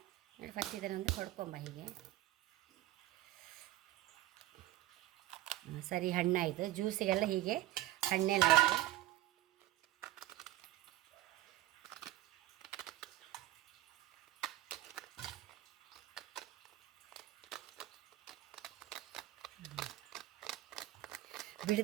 ನೋಡಿ ಫಸ್ಟ್ ಇದನ್ನೊಂದು ಹೊಡ್ಕೊಂಬ ಹೀಗೆ. ಸರಿ, ಹಣ್ಣಾಯಿತು. ಜ್ಯೂಸಿಗೆಲ್ಲ ಹೀಗೆ ಹಣ್ಣೆಲ್ಲ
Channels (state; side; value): quieter; left; 15.8 dB